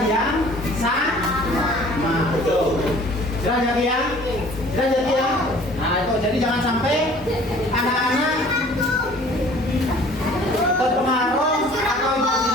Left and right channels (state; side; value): normal; both; correlation 0.51